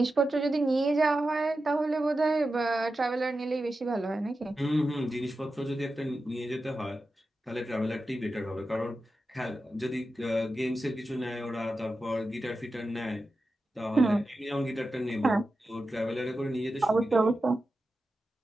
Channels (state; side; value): normal; both; correlation 0.91